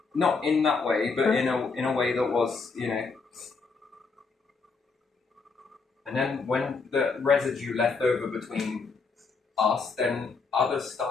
Not in that way, but in a way that was, you know. And then when the residue left over between us, then others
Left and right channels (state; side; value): quieter; right; 4.5 dB